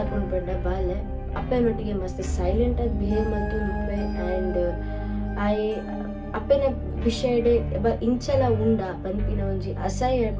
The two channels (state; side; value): identical; both; correlation 1.00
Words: ಪಂಡ ಬಾಲೆ ಅಪ್ಪನೊಟ್ಟಿಗೆ ಮಸ್ತ್ ಸೈಲೆಂಟ್ ಆಗಿ ಬಿಹೇವ್ ಮಾಡ್ತುಂಡುಪ್ಪೆ ಆ್ಯಂಡ್ ಆಯೆ ಅಪ್ಪನ ವಿಷಯಡೆ ಇಂಚಲ ಉಂಡ ಪನ್ಪಿನ ಒಂಜಿ